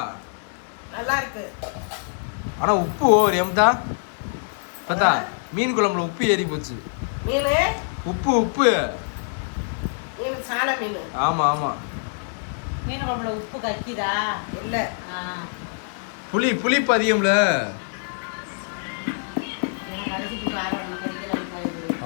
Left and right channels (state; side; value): silent; right; 62 dB below the other